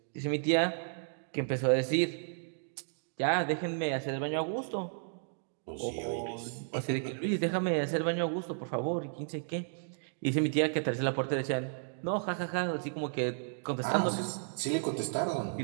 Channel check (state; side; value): silent; left; digital silence